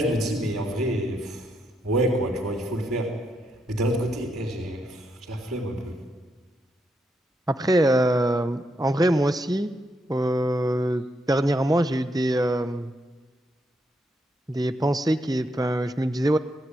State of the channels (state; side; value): normal; both; correlation 0.79